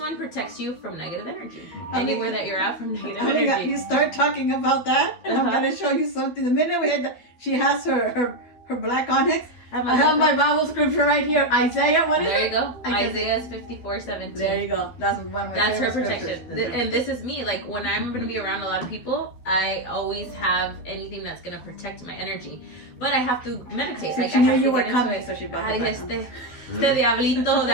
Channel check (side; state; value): right; late; 12 ms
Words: protects you from negative energy. Anywhere that you're at from negative energy. You start talking about that, and I'm going to show you something. The minute we had she has her black onyx, I have my Bible scripture right here. Isaiah, what is it? There you go. Isaiah is 54:17. There you go. That's one of my That's her favorite protection. scriptures. And this is me. Like when I'm going to be around a lot of people, I always have anything that's going to protect my energy. But I have to meditate. So like she I knew have you to were get coming, into it. so she brought it back. Este diablito de